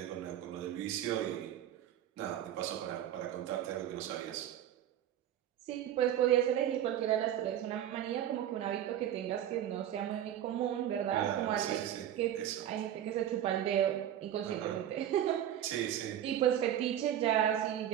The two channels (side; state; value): left; quieter; 11.0 dB